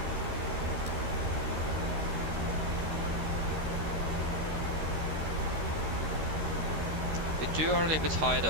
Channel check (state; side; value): late; left; 13 ms